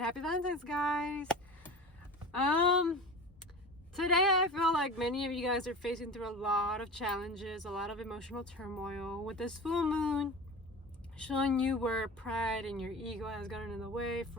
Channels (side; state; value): both; normal; correlation 0.33